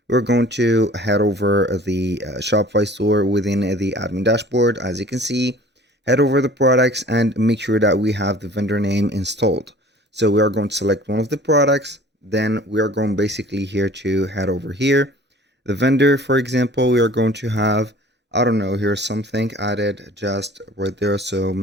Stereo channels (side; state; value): both; normal; correlation 0.48